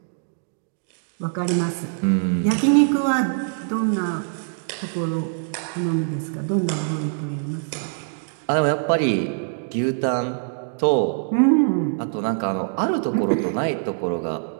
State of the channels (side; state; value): left; silent; digital silence